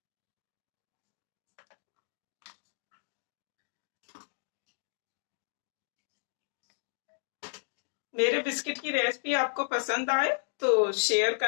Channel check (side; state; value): right; silent; digital silence